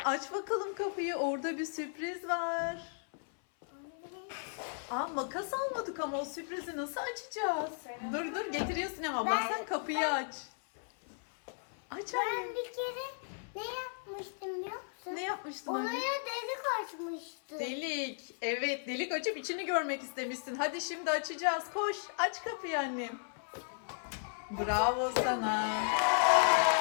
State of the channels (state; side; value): silent; right; 54 dB below the other